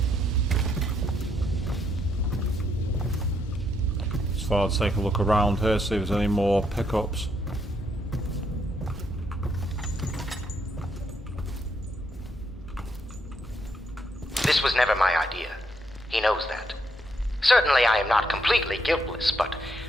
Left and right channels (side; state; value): both; normal; correlation 0.75